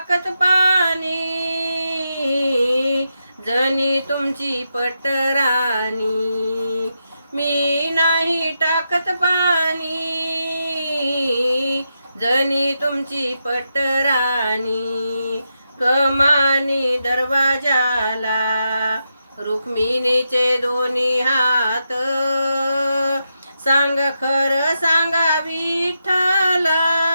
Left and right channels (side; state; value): both; inverted; correlation -0.85